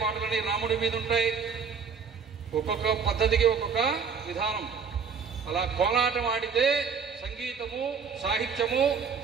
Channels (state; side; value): quieter; left; 6.1 dB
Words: పాటలన్నీ రాముడి మీద ఉంటాయి. ఒక్కొక్క పద్ధతికి ఒక్కొక్క విధానం. అలా కోలాటం ఆడితే సంగీతము, సాహిత్యము,